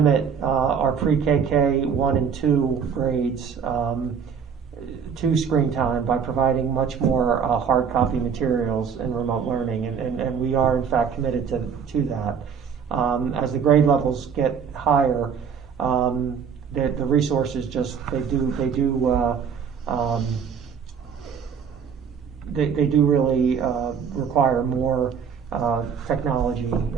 our pre-KK 1 and 2 grades to screen time by providing much more hard copy materials and remote learning, and we are in fact committed to that. As the grade levels get higher, the resources just they do really require more technology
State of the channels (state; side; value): quieter; left; 6.8 dB